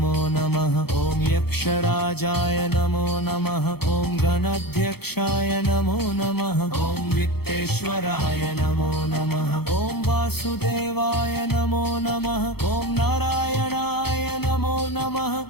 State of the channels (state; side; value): late; right; 0.96 ms